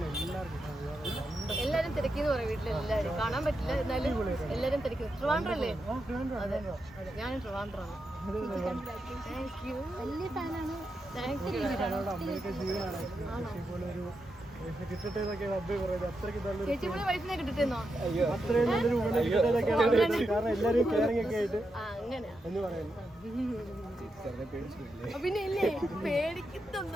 എല്ലാരും തിരക്കിന്ന് പറയാം വീട്ടിലെല്ലാരും കാണാൻ പറ്റില്ല. എന്നാലും എല്ലാരും തിരക്കുന്നു. ട്രിവാൻഡ്രം അല്ലേ? അതെ, ഞാനും ട്രിവാൻഡ്രമാണ്. വലിയ ഫാനാണ്. ചേച്ചിയുടെ വൈഫിനെ കിട്ടിട്ടെന്നോ? പിന്നെ ഇല്ലേ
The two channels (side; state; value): both; normal; correlation 0.86